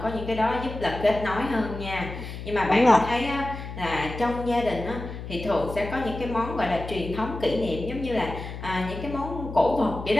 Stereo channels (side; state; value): left; noise; hum, 9 dB below the sound